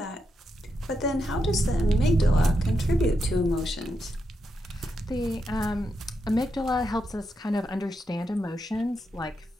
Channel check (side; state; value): both; normal; correlation 0.84